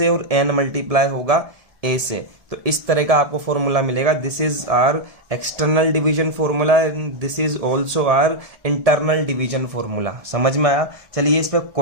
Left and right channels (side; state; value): left; late; 1.7 ms